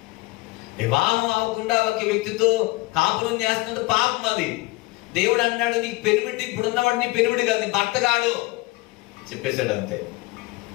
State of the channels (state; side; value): quieter; right; 21.9 dB